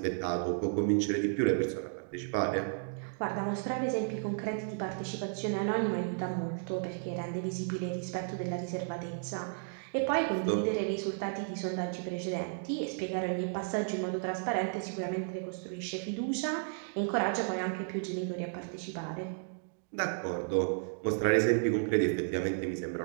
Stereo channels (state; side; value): silent; left; digital silence